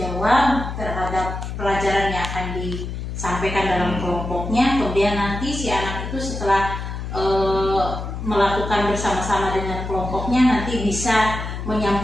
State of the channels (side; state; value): left; noise; hum, 6 dB below the sound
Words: terhadap pelajaran yang akan disampaikan dalam kelompoknya. Kemudian nanti si anak itu setelah melakukan bersama-sama dengan kelompoknya nanti bisa